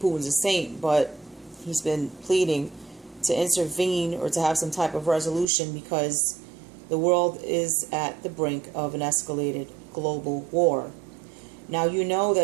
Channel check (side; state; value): left; drops out; at 5.5 s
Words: a saint, but he's been pleading to intervene or to have some type of resolution because the world is at the brink of an escalated global war. Now, you know